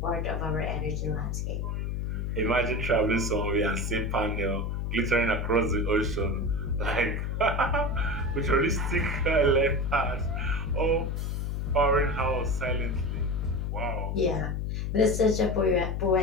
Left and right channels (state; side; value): noise; left; hum, 1 dB below the sound